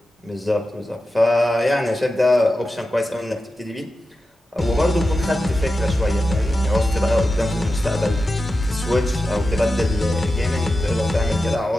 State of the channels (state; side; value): normal; both; correlation 0.92